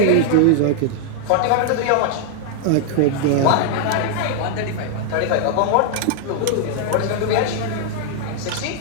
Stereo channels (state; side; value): different; both; correlation 0.00